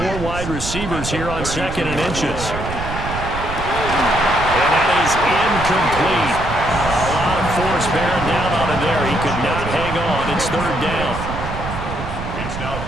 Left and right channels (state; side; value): noise; right; rumble, 7 dB below the sound